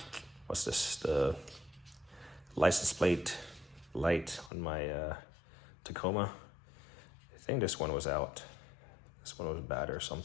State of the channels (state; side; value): drops out; right; at 4.5 s